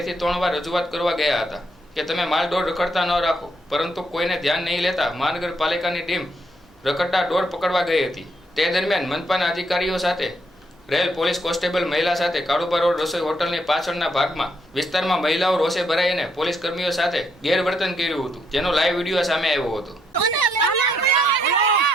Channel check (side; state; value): both; normal; correlation 0.74